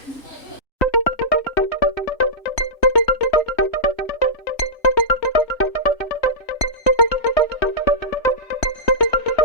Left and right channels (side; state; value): right; late; 3.2 ms